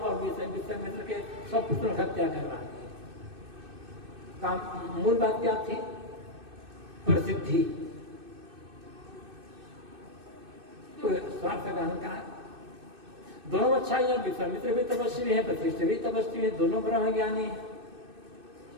विश्वामित्र के 100 पुत्रों की हत्या करवा दी। काम मूल बात क्या थी? प्रसिद्धि। तो स्वार्थ का अहंकार। दोनों अच्छा है, विश्वामित्र भी तपस्वी है, वशिष्ठ भी तपस्वी है, दोनों ब्रह्म ज्ञानी है।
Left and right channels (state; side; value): late; left; 2.6 ms